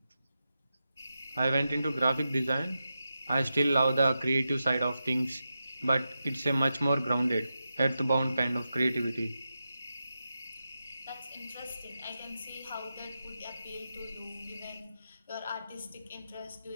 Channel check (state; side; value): inverted; both; correlation -0.90